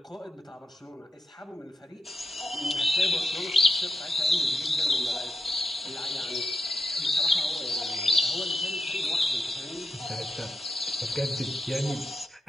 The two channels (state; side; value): normal; both; correlation 0.85